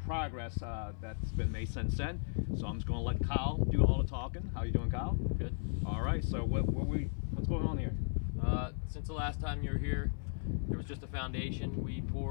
that's been made since then. So I'm just going to let Kyle do all the talking. How you doing, Kyle? Good. All right. So what's going on here? Since the last time you were here, there was just a foundation. We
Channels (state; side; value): silent; right; 54 dB below the other